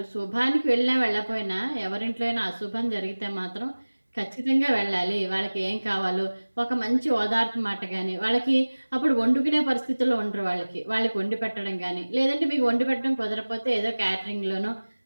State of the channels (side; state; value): both; inverted; correlation -1.00